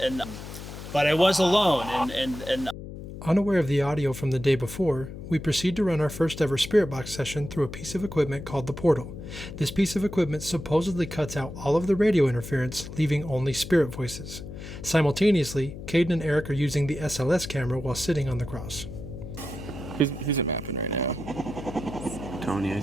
Unaware of the audio from the day before, we proceed to run our first ever spirit box session through a piece of equipment called the portal. This piece of equipment supposedly cuts out all of the radio interference, leaving only spirit voices. Simultaneously, Caden and Eric are using the SLS camera while sitting on the cross. Who's it mapping right now? Tony, I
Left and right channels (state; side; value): noise; left; hum, 11 dB below the sound